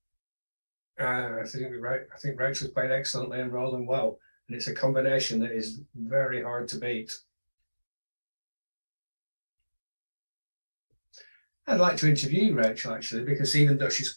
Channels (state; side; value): inverted; both; correlation -1.00